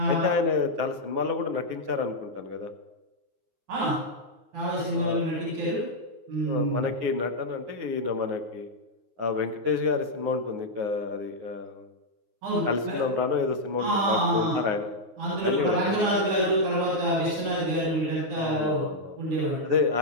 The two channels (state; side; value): late; left; 9.5 ms